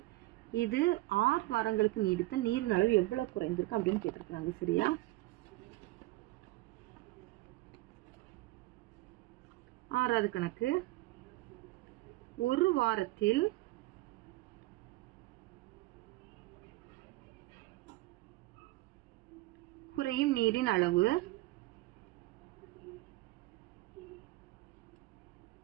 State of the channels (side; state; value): left; quieter; 19.7 dB